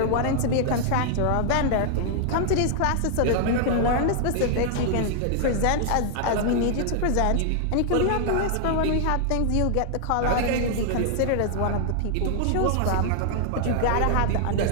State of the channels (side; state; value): both; different; correlation -0.01